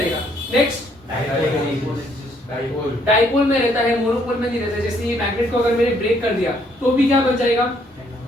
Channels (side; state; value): both; normal; correlation 0.68